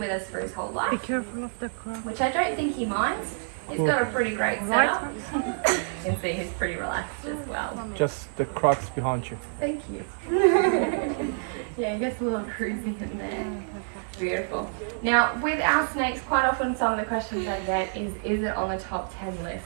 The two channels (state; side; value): silent; left; digital silence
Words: us for his whole life. Be careful of the crocs. Which I don't think he minds. He's got a pretty great setup. You can see he's pretty relaxed as well. Just the crocs behind you. Thank you. Yeah, he gets a little cruisy in there. Beautiful. Now, with our snakes, quite often some of the questions I get is it on the top 10 list?